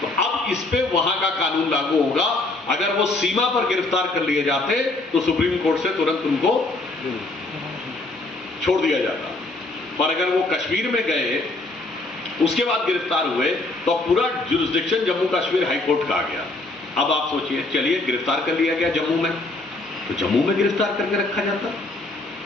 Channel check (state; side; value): quieter; right; 3.0 dB